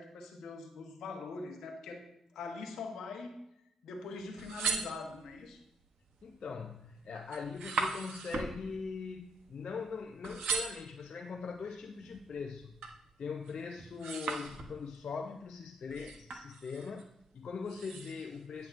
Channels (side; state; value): both; normal; correlation 0.69